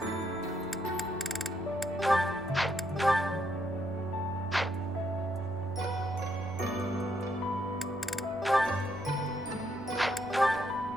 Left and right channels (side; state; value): both; normal; correlation 0.75